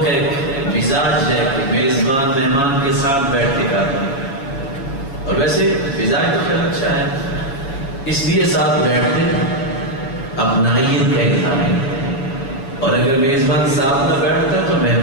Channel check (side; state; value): right; late; 7.2 ms